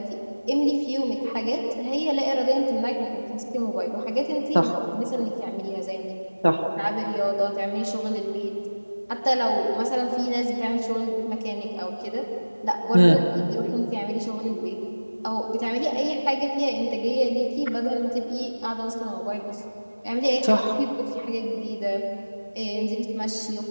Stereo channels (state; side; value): inverted; both; correlation -1.00